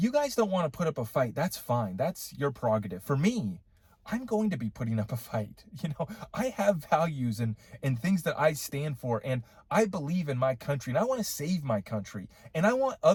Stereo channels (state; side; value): identical; both; correlation 1.00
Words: guys don't want to put up a fight, that's fine. That's your prerogative. For me, I'm going to be putting up a fight. I have values and things that I stand for, and I believe in my country, and I want to save my country, and I want